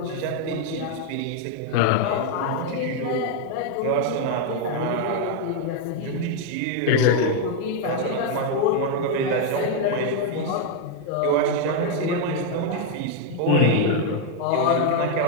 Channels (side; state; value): both; different; correlation 0.01